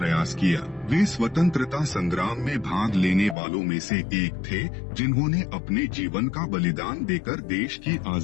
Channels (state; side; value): drops out; right; at 3.4 s